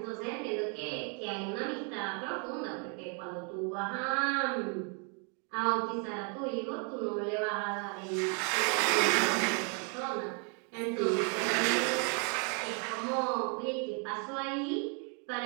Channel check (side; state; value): left; quieter; 38.2 dB